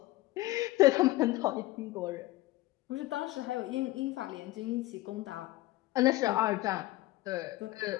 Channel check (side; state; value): right; quieter; 18.4 dB